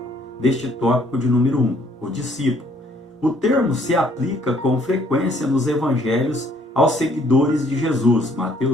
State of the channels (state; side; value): normal; both; correlation 0.64